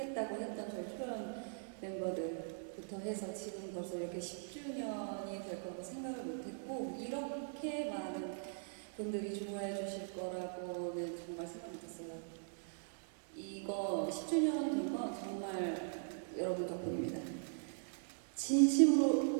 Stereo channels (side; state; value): left; silent; digital silence